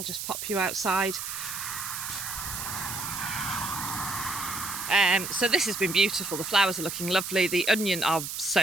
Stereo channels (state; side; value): noise; right; hiss, 6 dB below the sound